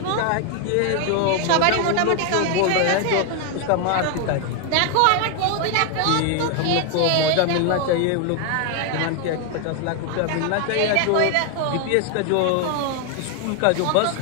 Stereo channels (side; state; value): both; different; correlation 0.01